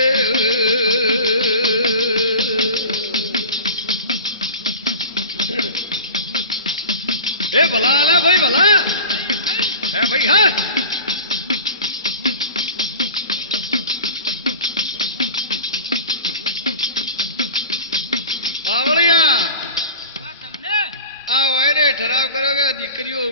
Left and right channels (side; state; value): both; inverted; correlation -0.34